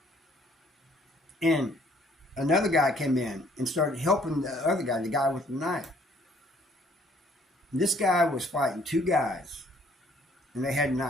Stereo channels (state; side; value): normal; both; correlation 0.62